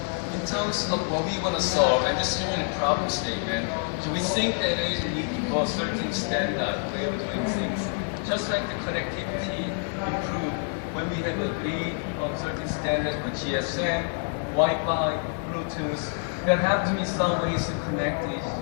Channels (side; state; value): right; silent; 55 dB below the other